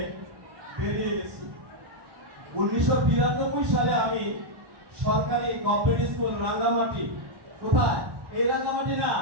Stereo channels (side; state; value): left; late; 1.1 ms